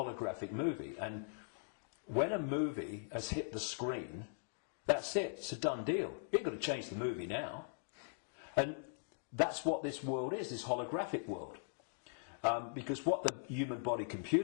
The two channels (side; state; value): right; silent; digital silence